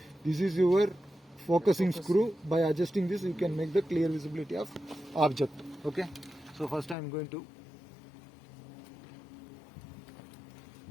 This is your focusing screw. By adjusting this, you can make the clear visibility of object. Okay. So first I am going to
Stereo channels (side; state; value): right; drops out; at 7.0 s